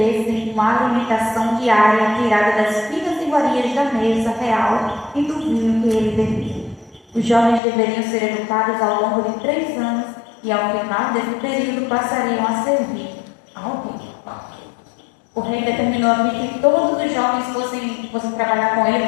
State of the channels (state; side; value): drops out; right; at 7.6 s